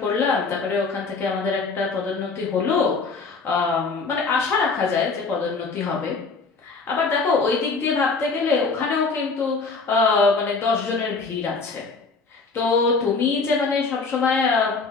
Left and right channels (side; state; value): right; quieter; 4.3 dB